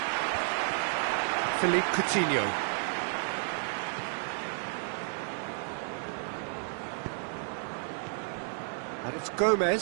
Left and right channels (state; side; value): silent; left; 57 dB below the other